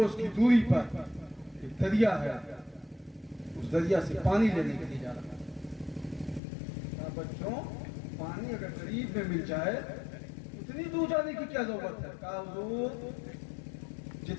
کی دوری پر ایک دریا ہے, اس دریا سے پانی لینے کے لیے جا رہا ہوں. کہا بچوں پانی اگر قریب میں مل جائے اتنی دور جانے کی کیا ضرورت ہے؟ کہا حضور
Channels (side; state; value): right; drops out; at 6.4 s